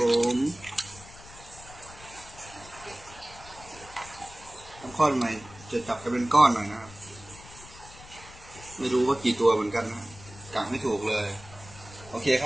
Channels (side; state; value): left; noise; rumble, 19 dB below the sound